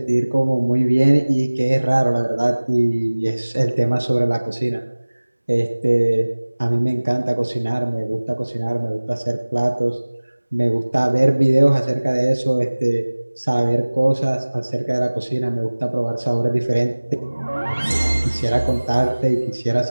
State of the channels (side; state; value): both; inverted; correlation -1.00